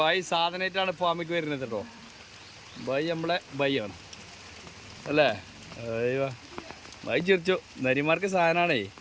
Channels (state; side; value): identical; both; correlation 1.00